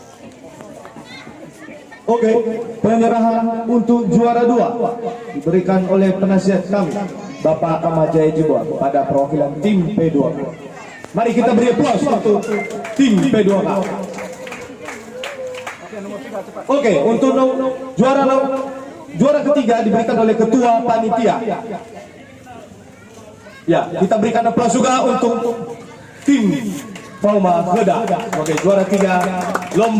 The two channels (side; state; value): both; identical; correlation 1.00